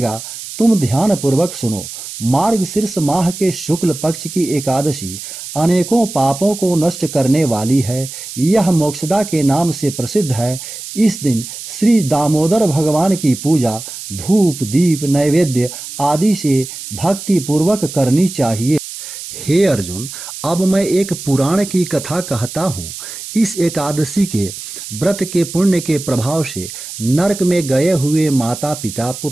तुम ध्यान पूर्वक सुनो। मार्गशीर्ष माह के शुक्ल पक्ष की एकादशी अनेकों पापों को नष्ट करने वाली है। यह मोक्षदा के नाम से प्रसिद्ध है। इस दिन श्री दामोदर भगवान की पूजा धूप दीप नैवेद्य आदि से भक्ति पूर्वक करनी चाहिए। हे अर्जुन, अब मैं एक पुराण की कथा कहता हूँ। इस एकादशी के व्रत के पुण्य के प्रभाव से नरक में गए हुए माता पिता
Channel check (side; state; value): right; noise; hiss, 10 dB below the sound